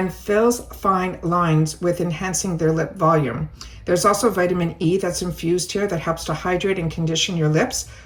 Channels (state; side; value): identical; both; correlation 1.00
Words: fills fine lines with enhancing their lip volume. There's also vitamin E that's infused here that helps to hydrate and condition your lips